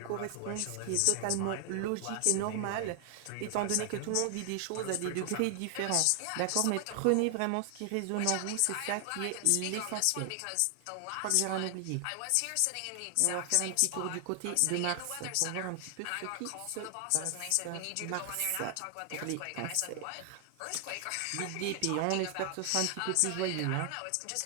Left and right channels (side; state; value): both; different; correlation 0.00